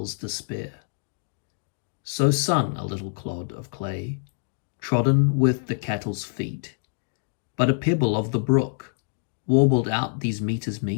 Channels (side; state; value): right; silent; 61 dB below the other